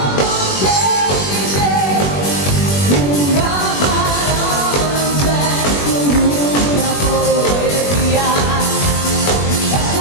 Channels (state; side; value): late; right; 21 ms